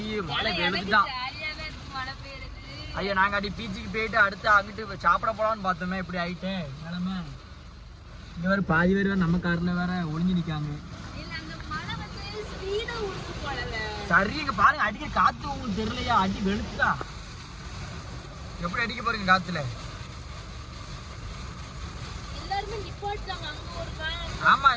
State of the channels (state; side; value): identical; both; correlation 1.00